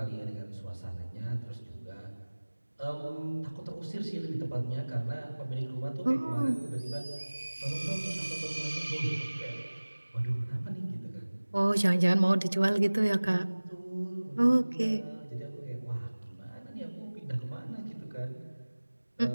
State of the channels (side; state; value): both; inverted; correlation -1.00